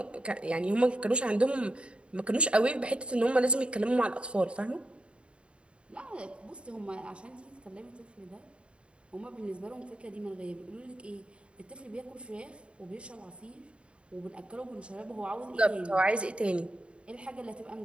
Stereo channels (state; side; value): late; left; 0.057 ms